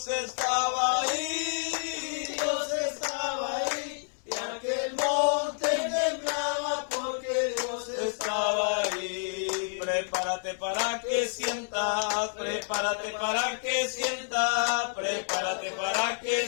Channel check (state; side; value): silent; right; 58 dB below the other